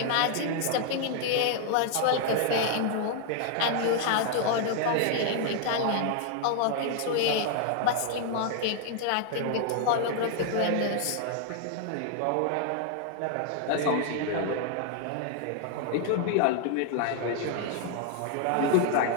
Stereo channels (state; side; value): different; both; correlation 0.00